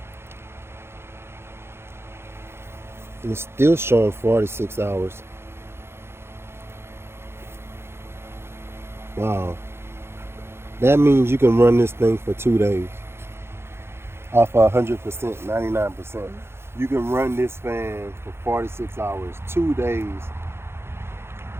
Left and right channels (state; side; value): late; left; 0.12 ms